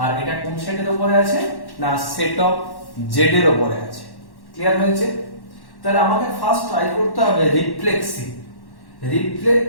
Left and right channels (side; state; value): right; late; 1.1 ms